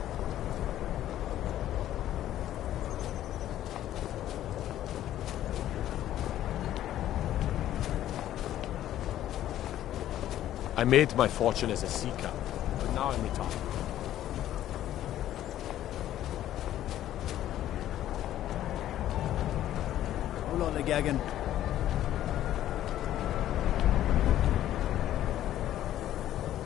I made my fortune as a sea captain, but now I'm retired. Hold on, Gagan.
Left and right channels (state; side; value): quieter; right; 12.5 dB